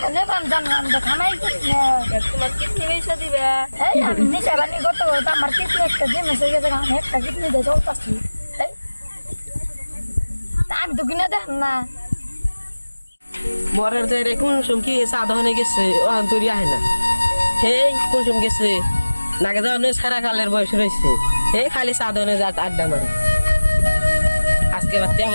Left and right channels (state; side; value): inverted; both; correlation -1.00